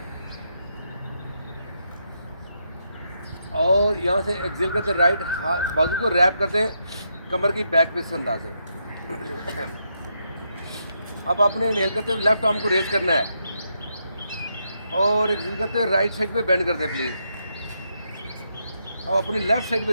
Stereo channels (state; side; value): inverted; both; correlation -0.80